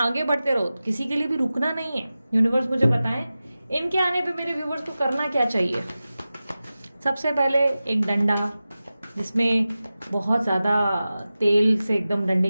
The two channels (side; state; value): both; inverted; correlation -0.95